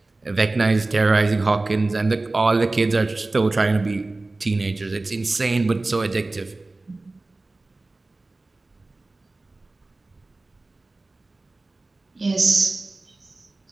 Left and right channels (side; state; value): left; quieter; 3.1 dB